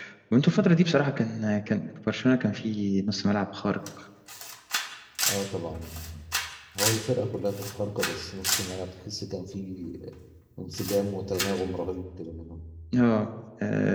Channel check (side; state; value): both; identical; correlation 1.00